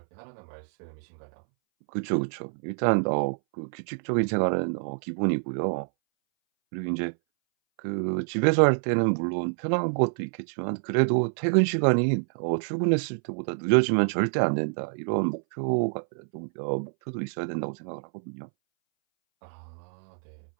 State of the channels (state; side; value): silent; left; 60 dB below the other